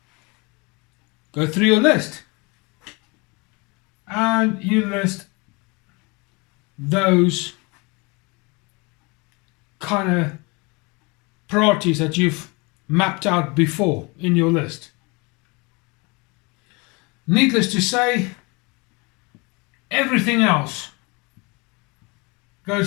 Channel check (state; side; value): quieter; right; 28.0 dB